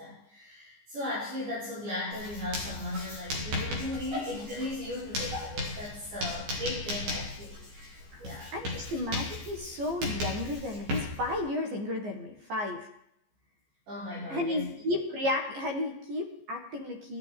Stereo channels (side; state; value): left; late; 14 ms